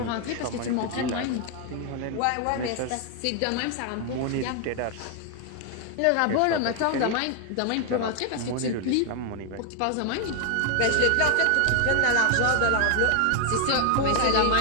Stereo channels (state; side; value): different; both; correlation 0.00